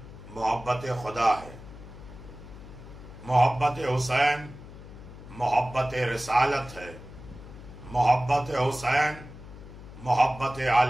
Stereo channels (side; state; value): left; noise; hum, 15 dB below the sound